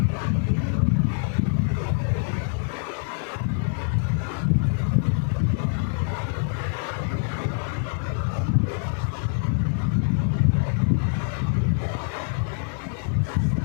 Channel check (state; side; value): silent; right; 56 dB below the other